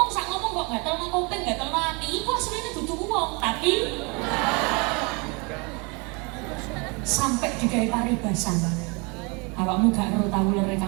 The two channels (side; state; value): left; quieter; 30.2 dB